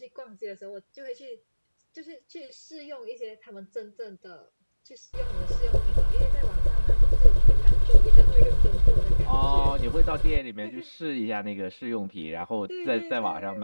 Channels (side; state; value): both; inverted; correlation -1.00